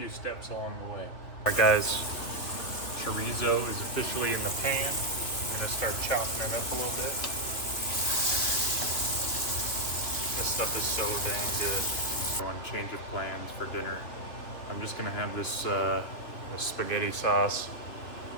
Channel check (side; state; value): right; late; 3.1 ms